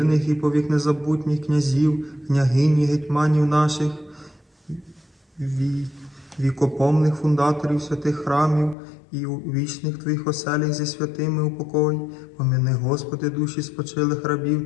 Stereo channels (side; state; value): right; drops out; at 8.8 s